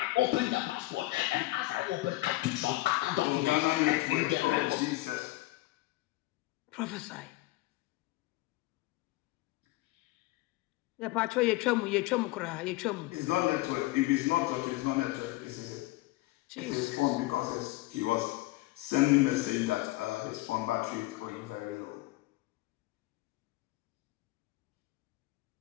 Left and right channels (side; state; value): right; quieter; 19.4 dB